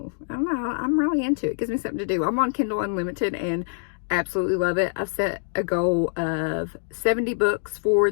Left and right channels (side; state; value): right; silent; digital silence